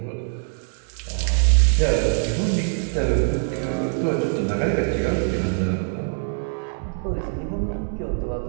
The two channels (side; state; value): left; silent; digital silence